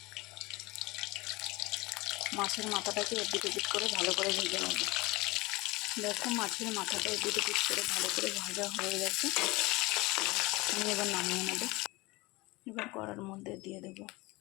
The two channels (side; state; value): right; quieter; 22.6 dB